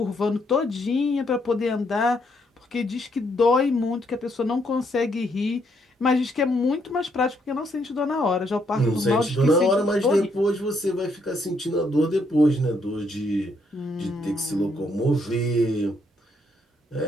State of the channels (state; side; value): normal; both; correlation 0.73